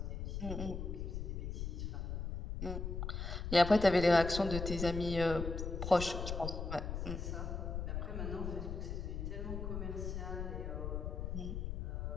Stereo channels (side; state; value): left; noise; rumble, 4 dB below the sound